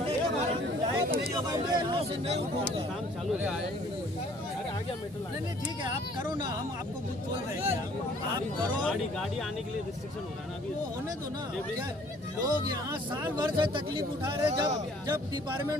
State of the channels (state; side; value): normal; both; correlation 0.57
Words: के बाद लायक नहीं होगा मैं यहाँ से नहीं उठूंगा। काम चालू है, नहीं ठीक है, आप करो ना, हम आपको कुछ बोल रहे हैं, आप करो। गाड़ी आने के लिए रिस्ट्रिक्शन हो रहा है ना अभी, वो होने दो ना। क्या लोग यहाँ साल भर से तकलीफ उठा रहे, जब